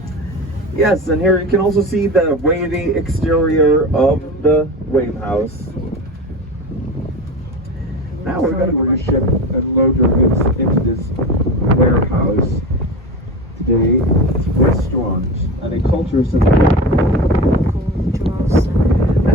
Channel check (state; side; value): normal; both; correlation 0.28